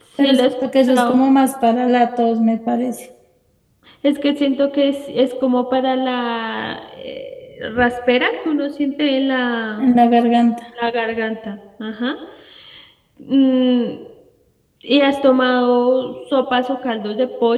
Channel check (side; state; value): both; identical; correlation 1.00